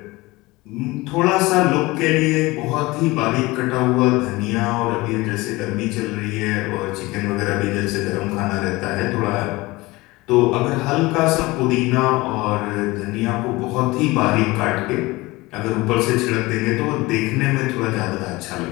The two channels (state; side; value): quieter; right; 21.4 dB